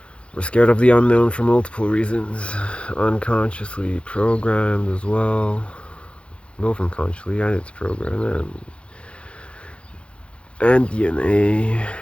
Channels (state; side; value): late; right; 0.059 ms